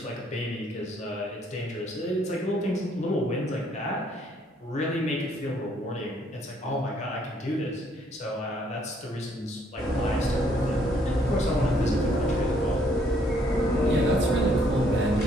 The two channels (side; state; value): both; normal; correlation 0.67